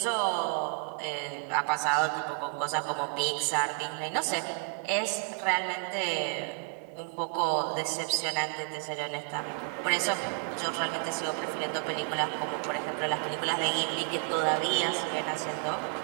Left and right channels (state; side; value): quieter; left; 36.1 dB